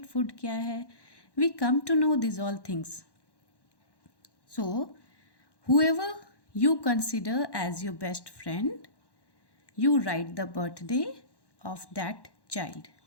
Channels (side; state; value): right; late; 1.1 ms